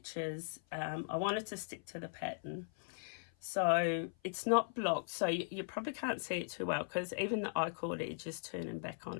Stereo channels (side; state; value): right; silent; 52 dB below the other